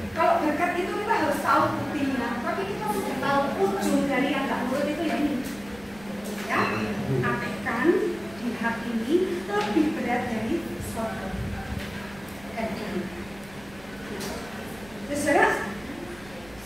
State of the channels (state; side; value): noise; right; rumble, 21 dB below the sound